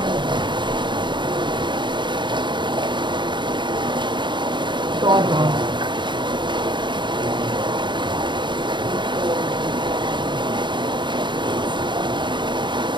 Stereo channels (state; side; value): late; left; 0.23 ms